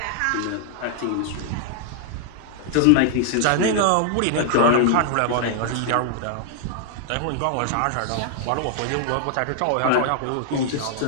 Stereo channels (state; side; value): different; both; correlation -0.01